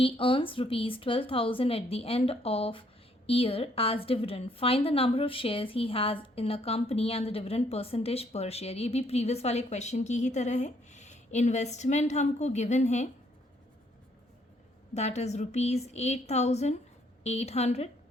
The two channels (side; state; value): both; normal; correlation 0.68